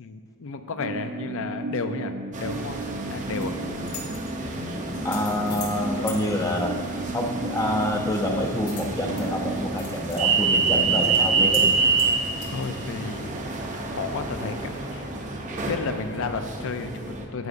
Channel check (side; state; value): both; normal; correlation 0.11